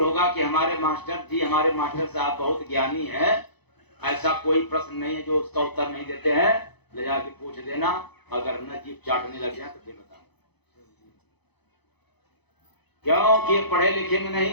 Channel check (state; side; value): late; right; 0.98 ms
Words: होगा कि हमारे मास्टर जी, हमारे मास्टर साहब बहुत ज्ञानी है, ऐसा कोई प्रश्न नहीं है जो उसका उत्तर नहीं देते हैं, ले जाके पूछ देना। अगर न जीभ चाटने लग जाए तो फिर बताओ, क्योंकि पढ़े लिखे में